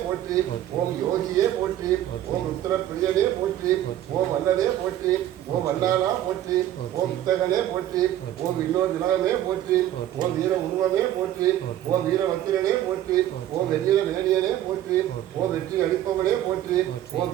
போற்றி. ஓம் யோகியே போற்றி. ஓம் ருத்ரப்பிரியனே போற்றி. ஓம் வல்லனே போற்றி. ஓம் வல்லாளா போற்றி. ஓம் வித்தகனே போற்றி. ஓம் இன்னொரு திலகமே போற்றி. ஓம் வீர உருவமே போற்றி. ஓம் வீரவத்திரனே போற்றி. ஓம் வெண்ணில மேனியனே போற்றி. ஓம் வெற்றி அளிப்பவனே போற்றி. ஓம்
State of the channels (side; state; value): left; quieter; 12.4 dB